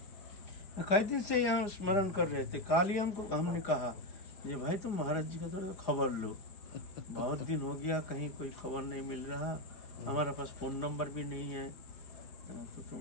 कई दिन से यहाँ स्मरण कर रहे थे। काल ही हमने कहा ये भाई तुम महाराज जी का थोड़ा खबर लो, बहुत दिन हो गया कहीं कोई खबर नहीं मिल रहा, हमारे पास फ़ोन नंबर भी नहीं है, तो तुम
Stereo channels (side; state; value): right; late; 4.9 ms